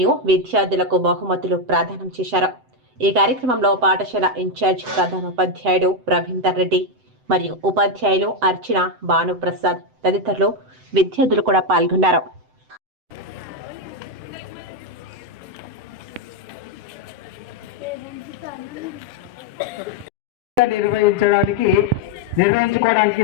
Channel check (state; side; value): late; left; 7.8 ms